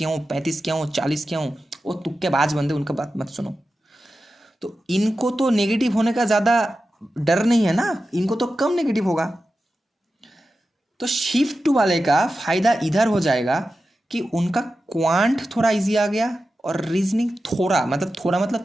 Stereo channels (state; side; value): normal; both; correlation 0.92